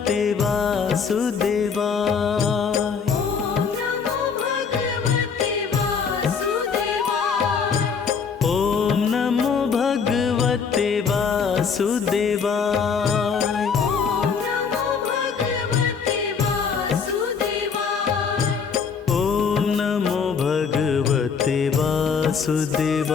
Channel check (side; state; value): right; quieter; 6.0 dB